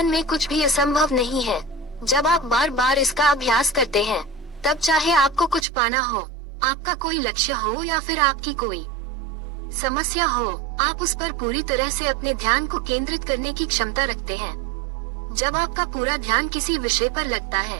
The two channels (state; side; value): drops out; left; at 5.7 s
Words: में कुछ भी असंभव नहीं है। जब आप बार बार इसका अभ्यास करते हैं, तब चाहे आपको कुछ पाना हो, आपका कोई लक्ष्य हो या फिर आपकी कोई समस्या हो, आप उस पर पूरी तरह से अपने ध्यान को केंद्रित करने की क्षमता रखते हैं। जब आपका पूरा ध्यान किसी विषय पर लगता